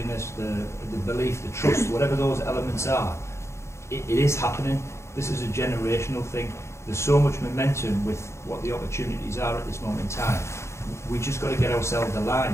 the belief, the trust, whatever those elements are, it is happening. This is a generational thing. There's so much momentum with what the opportunities are at this moment in time. We just got to get ourselves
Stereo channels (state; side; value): late; right; 0.13 ms